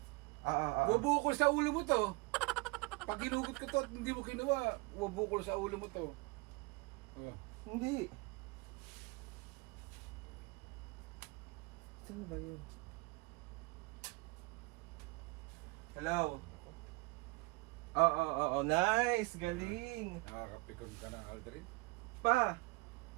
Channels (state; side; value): quieter; left; 25.7 dB